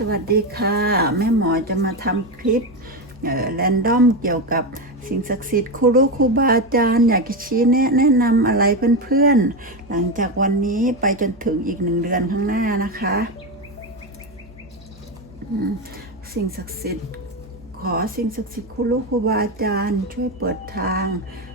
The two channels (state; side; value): noise; right; hum, 25 dB below the sound